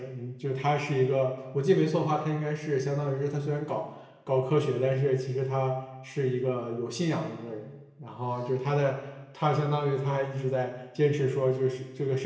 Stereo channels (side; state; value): both; identical; correlation 1.00